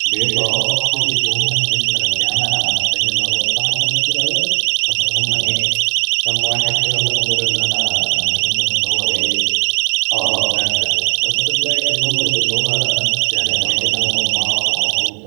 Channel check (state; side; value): silent; left; digital silence